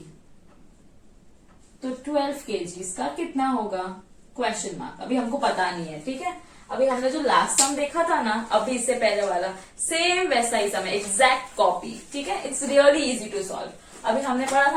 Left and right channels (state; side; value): identical; both; correlation 1.00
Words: 12 kgs का कितना होगा, क्वेश्चन मार्क। अभी हमको पता नहीं है, ठीक है। अभी हमने जो लास्ट सम देखा था ना, अभी इससे पहले वाला सेम वैसा ही सम है, एग्जैक्ट कॉपी, ठीक है। It's really easy to solve. अभी हमने पढ़ा